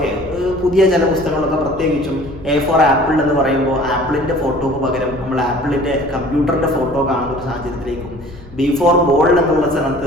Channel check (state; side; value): noise; left; rumble, 18 dB below the sound